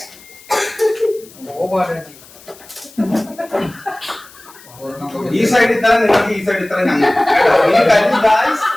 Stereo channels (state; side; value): noise; left; hiss, 23 dB below the sound